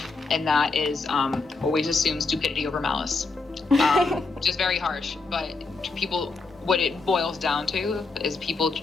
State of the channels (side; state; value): right; quieter; 4.0 dB